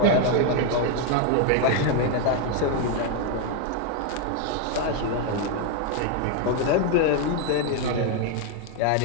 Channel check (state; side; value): different; both; correlation 0.01